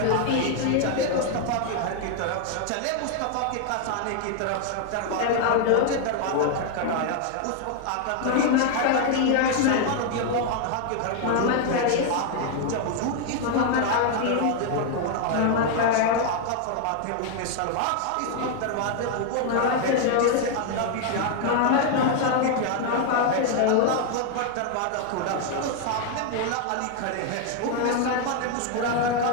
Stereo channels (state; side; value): different; both; correlation 0.00